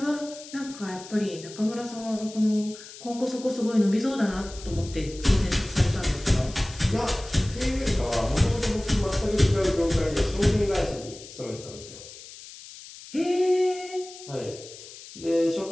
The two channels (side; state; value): left; noise; hiss, 16 dB below the sound